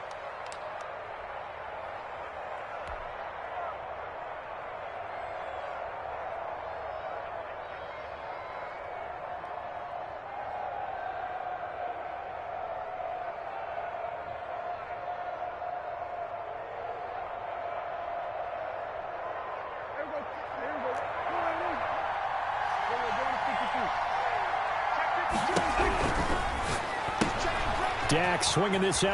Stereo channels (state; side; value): identical; both; correlation 1.00